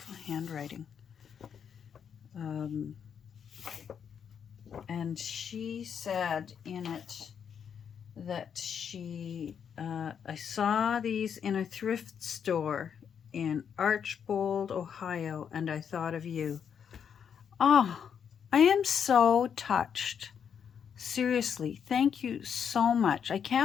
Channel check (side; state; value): right; quieter; 7.6 dB